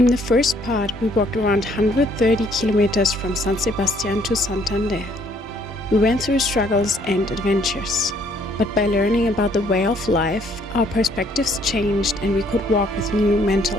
the first part, we walked around 130 kilometers from San Sebastian to Santander. We went through struggles and adventures. But by learning about the way of life, our perspectives changed and we could walk with new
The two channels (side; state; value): both; normal; correlation 0.64